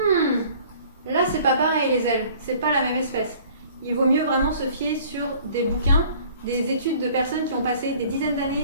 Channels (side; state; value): both; inverted; correlation -0.52